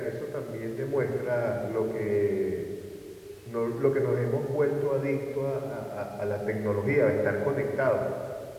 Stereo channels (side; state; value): both; identical; correlation 1.00